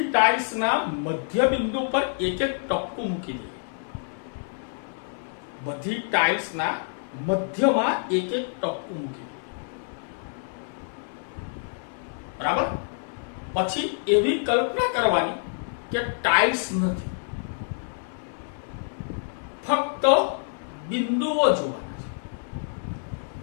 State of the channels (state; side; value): silent; right; 60 dB below the other